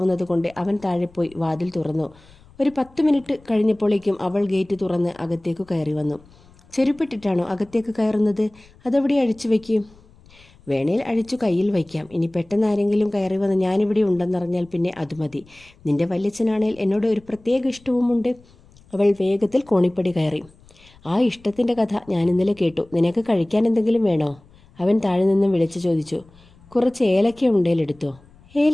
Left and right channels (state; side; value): noise; left; rumble, 27 dB below the sound